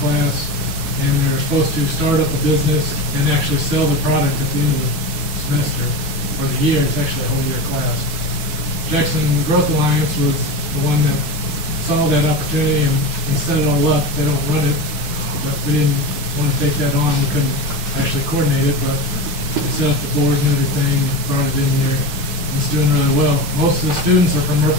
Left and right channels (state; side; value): late; left; 4.6 ms